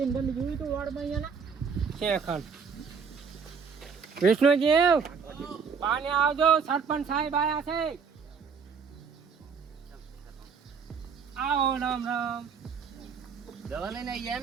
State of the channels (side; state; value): left; quieter; 5.9 dB